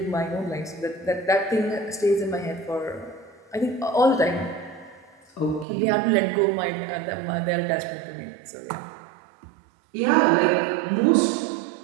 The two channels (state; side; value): drops out; left; at 5.7 s